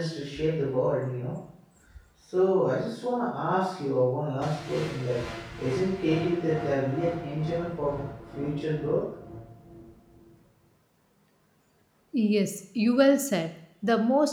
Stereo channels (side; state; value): both; identical; correlation 1.00